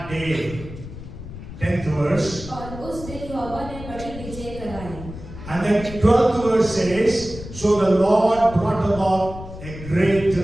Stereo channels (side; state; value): left; noise; rumble, 12 dB below the sound